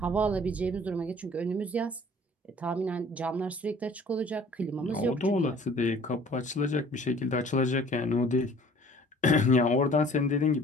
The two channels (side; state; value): both; normal; correlation 0.51